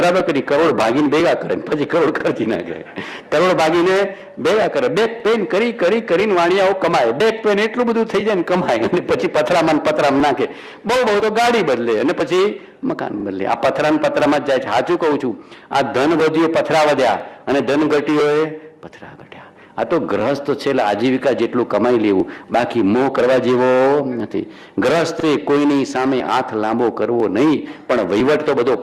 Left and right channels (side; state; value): both; identical; correlation 1.00